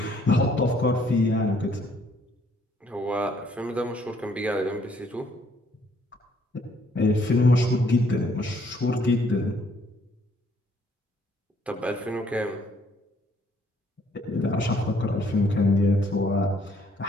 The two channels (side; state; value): both; normal; correlation 0.65